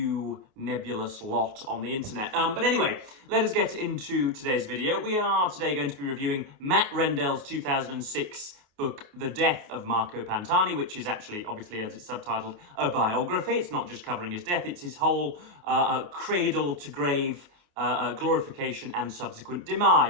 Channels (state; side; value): late; left; 28 ms